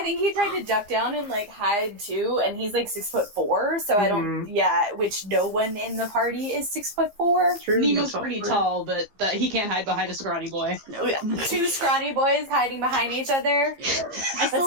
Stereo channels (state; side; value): late; left; 15 ms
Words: think he tried to duck down and like hide too, and he's like 6'4", so I don't. Yeah, which no one in the party is 6'4". True, Nemo's not pretty for- tall, but he can't hide behind a scrawny boy. No, 2 scrawny boys hiding behind each other. I That's still,